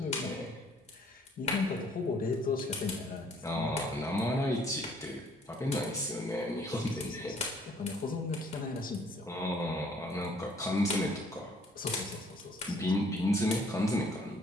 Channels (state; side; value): normal; both; correlation 0.61